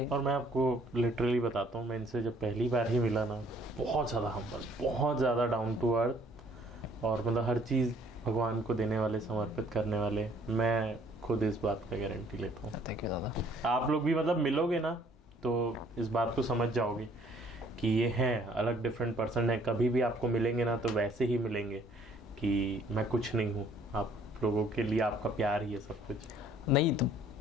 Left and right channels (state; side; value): normal; both; correlation 0.60